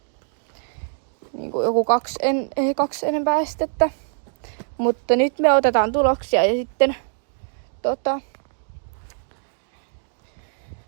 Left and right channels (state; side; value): silent; left; digital silence